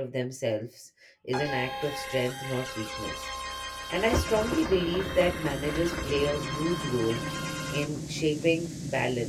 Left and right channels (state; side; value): identical; both; correlation 1.00